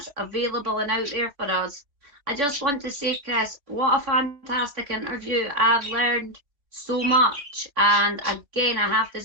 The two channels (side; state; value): left; late; 3.4 ms